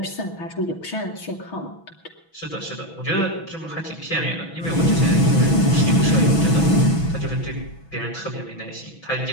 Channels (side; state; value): right; late; 6.1 ms